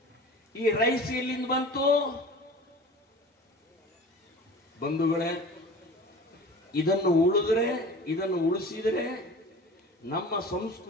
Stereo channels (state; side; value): normal; both; correlation 0.39